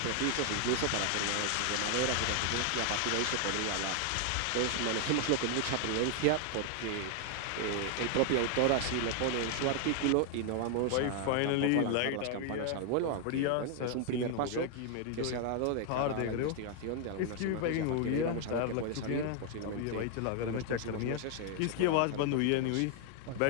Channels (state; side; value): different; both; correlation 0.00